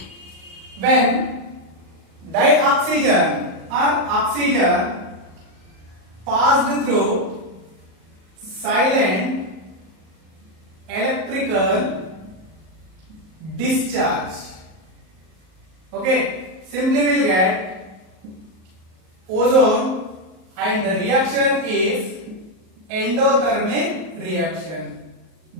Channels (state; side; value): late; left; 38 ms